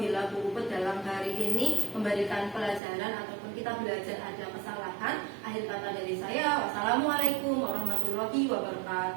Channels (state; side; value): drops out; left; at 2.8 s